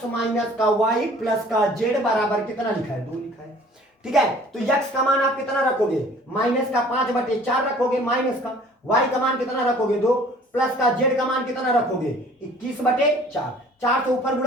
माइनस का y प्लस का z बराबर कितना लिखा है 2 लिखा है, ठीक है। तो x का मान आप कितना रखोगे माइनस का 5/4 रखोगे, माइनस का y का मान कितना रखोगे 2, प्लस का z का मान कितना रखोगे 21/4, 4 से ऊपर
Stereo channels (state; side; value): normal; both; correlation 0.51